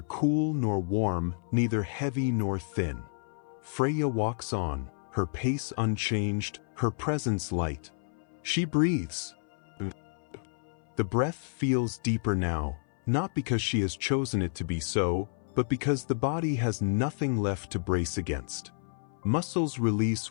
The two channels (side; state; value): right; silent; 58 dB below the other